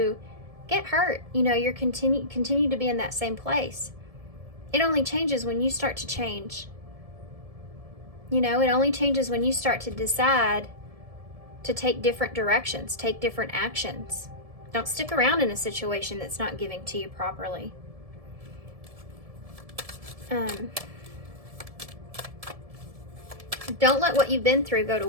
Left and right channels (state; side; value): late; left; 1.7 ms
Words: get hurt. You know, you're continue to be in that same place. It only changes when you start to change. You know, it only changes when you start to decide to take different directions, take different actions. Don't stick around in a situation that's not giving to you properly. Don't let what you've been through go to